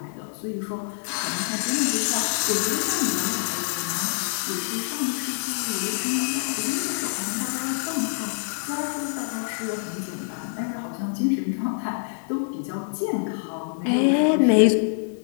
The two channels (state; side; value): silent; right; digital silence